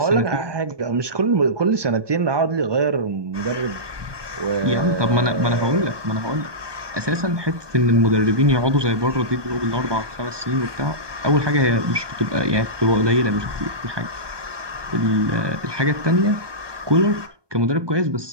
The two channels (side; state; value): left; late; 1.2 ms